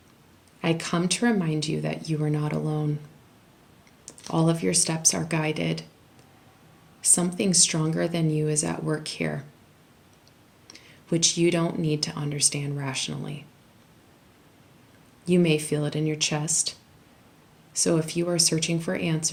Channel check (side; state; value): both; identical; correlation 1.00